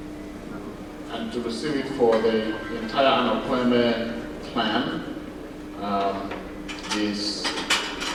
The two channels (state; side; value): identical; both; correlation 1.00